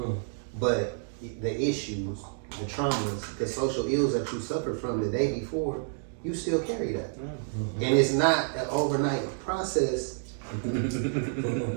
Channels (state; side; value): silent; left; digital silence